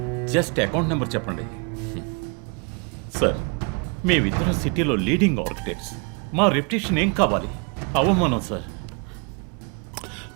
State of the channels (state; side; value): quieter; left; 34.1 dB